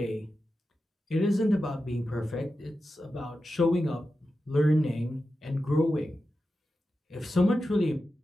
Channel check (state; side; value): normal; both; correlation 0.91